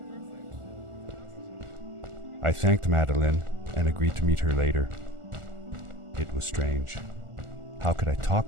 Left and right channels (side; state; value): left; late; 1.4 ms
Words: I thanked Madeline and agreed to meet her later. It was strange. How could I